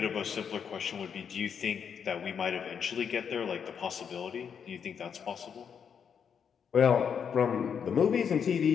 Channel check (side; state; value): right; quieter; 7.3 dB